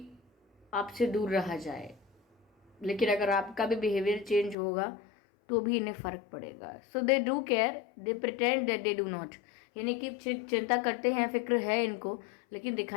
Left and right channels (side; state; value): right; drops out; at 4.5 s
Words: आपसे दूर रहा जाए, लेकिन अगर आपका भी बिहेवियर चेंज होगा तो भी इन्हें फ़र्क पड़ेगा। So they do care, they pretend that they do not, यानी कि चिंता करते हैं, फिक्र है इनको, लेकिन